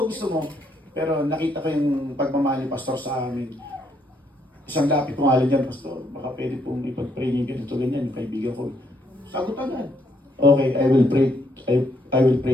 gusto mo. Pero nakita ko yung pagmamahal ni Pastor sa amin. Isang lapit ko nga dyan, Pastor, baka pwede pong ipag-pray niyo ganito ganyan, yung kaibigan ko. Sagot agad. Okay, I will pray. I will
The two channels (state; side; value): normal; both; correlation 0.73